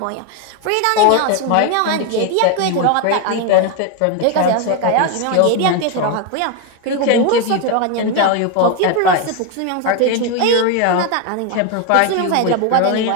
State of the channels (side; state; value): both; different; correlation 0.01